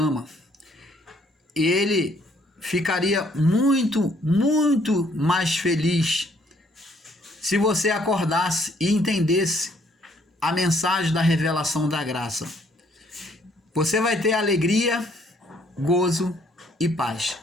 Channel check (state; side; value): normal; both; correlation 0.65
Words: E ele ficaria muito, muito mais feliz se você acordasse e entendesse a mensagem da revelação da graça. Você vai ter alegria, gozo e paz.